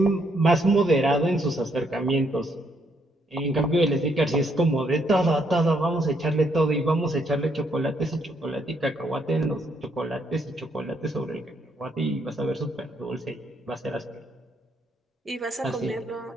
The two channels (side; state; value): both; normal; correlation 0.73